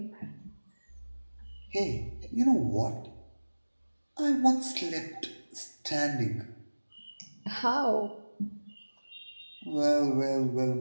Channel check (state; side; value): inverted; both; correlation -1.00